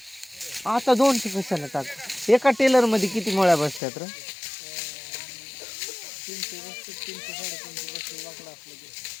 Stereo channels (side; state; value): right; drops out; at 3.8 s